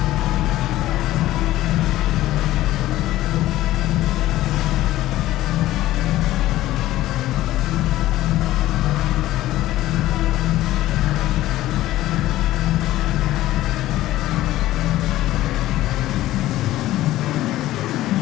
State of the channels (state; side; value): quieter; right; 15.3 dB